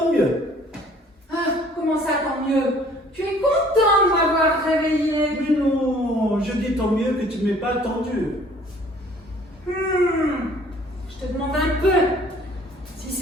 mieux. Ah, comment ça, tant mieux? Tu es content de m'avoir réveillé. Mais non, je dis tant mieux que tu ne m'aies pas attendu. Je te demande un peu si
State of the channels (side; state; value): both; normal; correlation 0.55